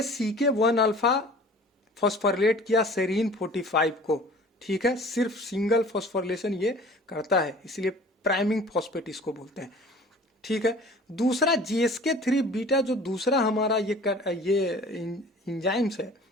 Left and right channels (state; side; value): normal; both; correlation 0.46